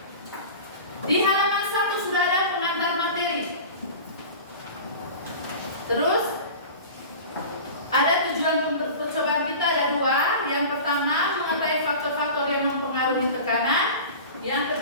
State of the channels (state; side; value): inverted; both; correlation -0.36